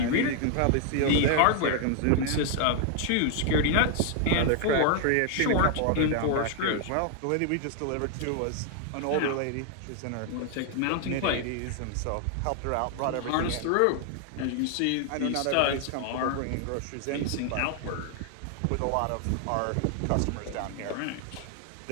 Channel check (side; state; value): both; different; correlation 0.00